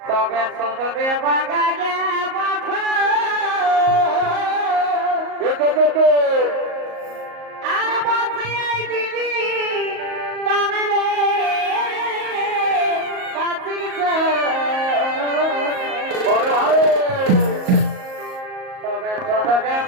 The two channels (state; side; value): late; left; 38 ms